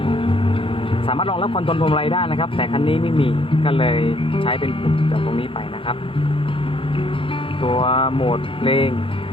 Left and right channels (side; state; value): right; late; 0.26 ms